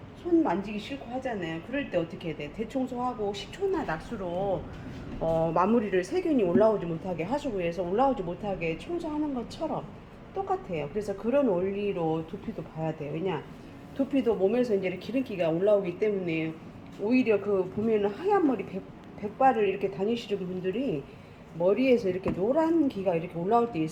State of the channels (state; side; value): identical; both; correlation 1.00